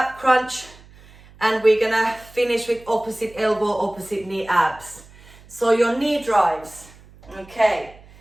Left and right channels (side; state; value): right; noise; hum, 24 dB below the sound